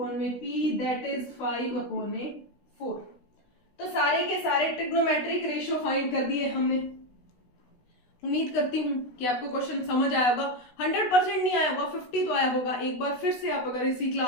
दैट इज 5/4। तो सारे के सारे ट्रिग्नोमेट्रिक रेशियो फाइंड कर दिए हमने। उम्मीद करती हूँ कि आपको क्वेश्चन समझ आया होगा। 100% नहीं आया होगा, 50 तो आया होगा। एक बार फिर से आप अगर इसी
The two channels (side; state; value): right; late; 16 ms